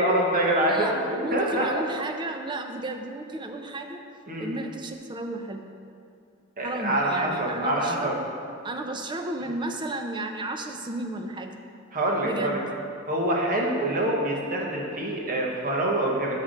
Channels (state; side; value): normal; both; correlation 0.05